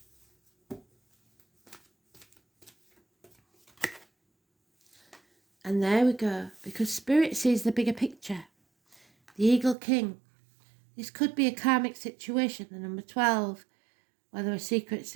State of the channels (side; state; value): left; drops out; at 9.8 s